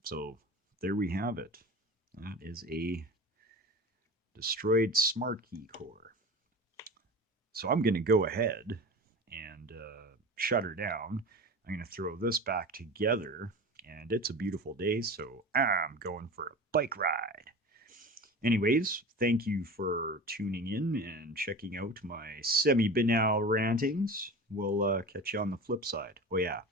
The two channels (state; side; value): normal; both; correlation 0.33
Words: so there we have it. That is a destroyed smartkey core. So I'm going to go ahead and shut her down. I'm going to throw this back together, and it's a beautiful day, so I'm going for a bike ride. Anyways, thank you for tuning in and checking out my semi-banal rantings. We'll catch you on the flip side. Oh yeah,